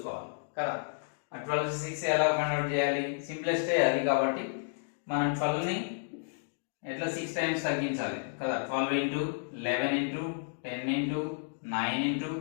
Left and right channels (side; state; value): right; silent; digital silence